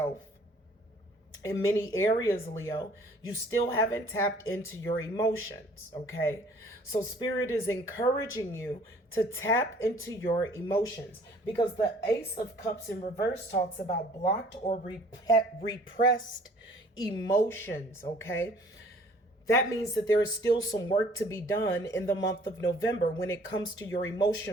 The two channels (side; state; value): both; normal; correlation 0.55